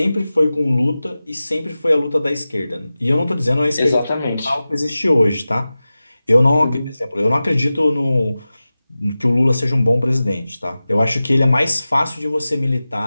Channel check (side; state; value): both; inverted; correlation -0.96